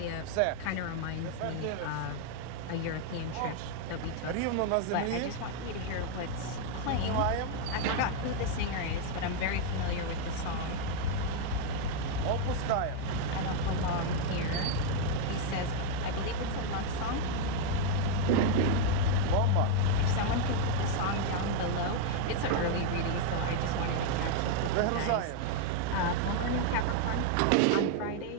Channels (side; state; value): both; different; correlation 0.00